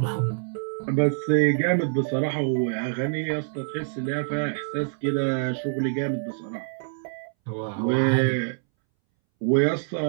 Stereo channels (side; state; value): left; silent; 61 dB below the other